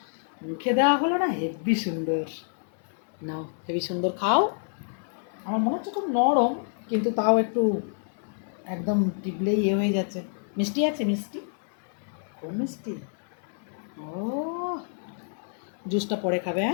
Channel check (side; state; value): right; silent; 59 dB below the other